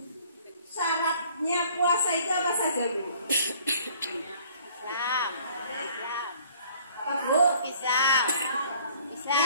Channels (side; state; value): both; inverted; correlation -0.56